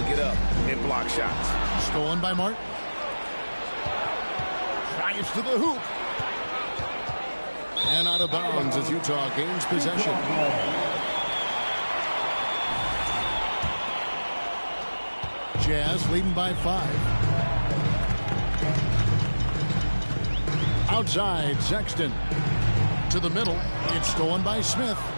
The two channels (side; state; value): both; inverted; correlation -1.00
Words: get up and block shots. Stolen by Martin. Drives to the hoop. And out of bounds as Utah gains possession. Jazz leading by 5. Outside, Sexton. To the middle. It's stolen by Smith.